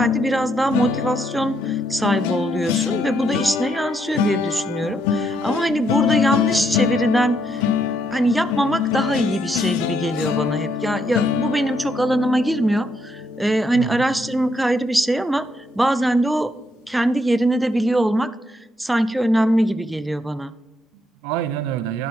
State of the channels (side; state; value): both; normal; correlation 0.75